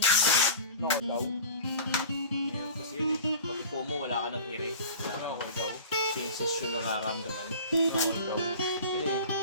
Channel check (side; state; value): both; inverted; correlation -0.39